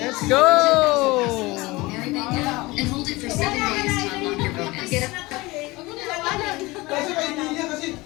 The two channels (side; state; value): right; quieter; 21.8 dB